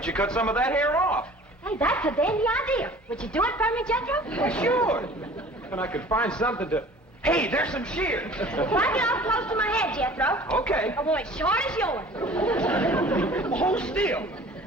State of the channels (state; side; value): normal; both; correlation 0.47